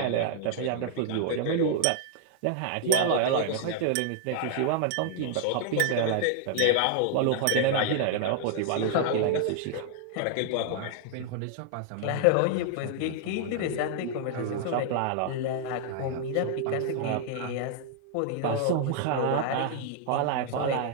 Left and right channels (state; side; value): different; both; correlation 0.00